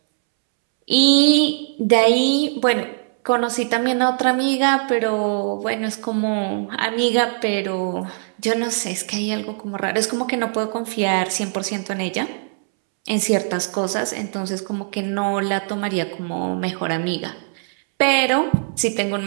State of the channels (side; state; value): left; silent; 65 dB below the other